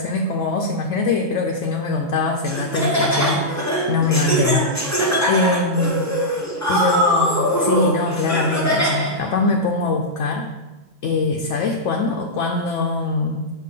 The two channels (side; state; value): both; normal; correlation -0.10